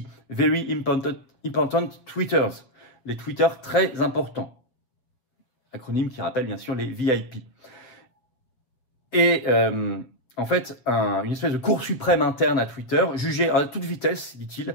Very Important Tweeters, les tweeters très importants, acronyme qui rappelle bien sûr les VIP. Et en fait, une espèce de cour suprême interne à Twitter jugeait à toute vitesse, dit-il,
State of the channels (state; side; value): late; right; 7.8 ms